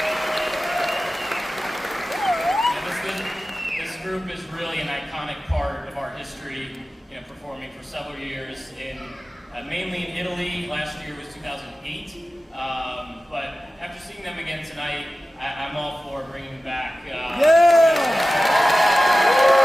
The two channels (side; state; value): both; normal; correlation 0.95